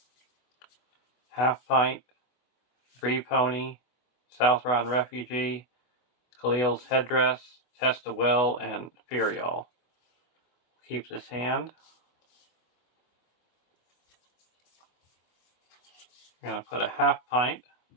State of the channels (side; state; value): right; late; 24 ms